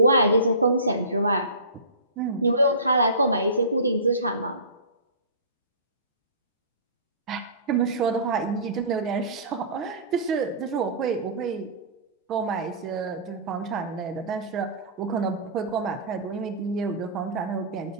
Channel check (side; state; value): both; inverted; correlation -0.34